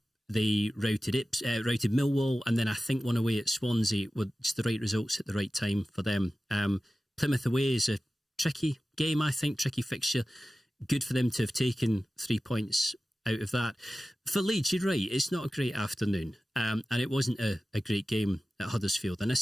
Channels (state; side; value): normal; both; correlation 0.95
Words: routed Millwall, and then I think one away at Swansea were just the right results at the right time for them. Plymouth away is a tricky game, I think, tricky fixture. Good for them to have taken 3 points out of that. For Leeds, you're right, it's not a great afternoon, and it wasn't a great game at Huddersfield. And I